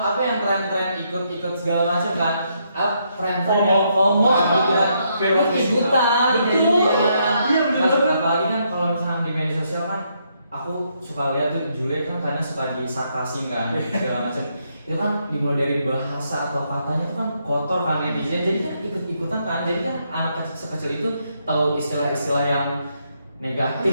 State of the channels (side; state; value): both; inverted; correlation -0.76